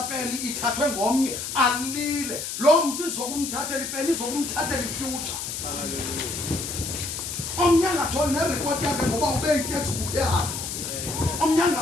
pen ithathwe ngomnye alile lo muntu izokumthathela ipen izokumthathela ifuture omnyanga tholi nereport yakhe ngoba ube i-textbook yakhe omnyanga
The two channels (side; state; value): left; noise; hiss, 5 dB below the sound